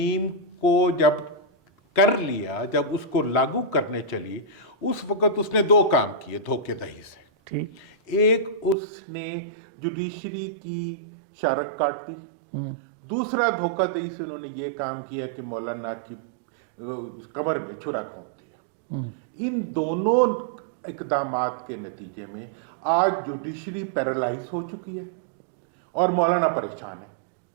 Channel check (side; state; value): left; drops out; at 8.8 s